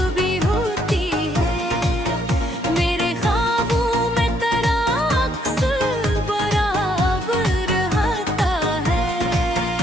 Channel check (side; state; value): both; normal; correlation 0.70